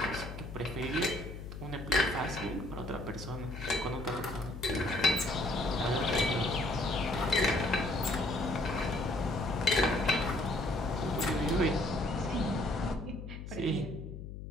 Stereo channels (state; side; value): noise; left; hum, 10 dB below the sound